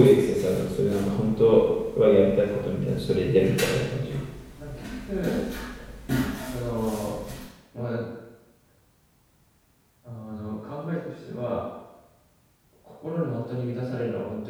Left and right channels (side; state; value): both; identical; correlation 1.00